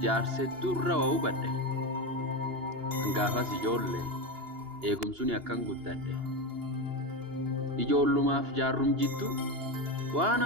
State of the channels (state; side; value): late; left; 2.8 ms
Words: jaarsee durra waa hubadhe hangaafas ijoollee eegumsuun akkan guddadhe ijoollumaaf jaarrum jiddu waan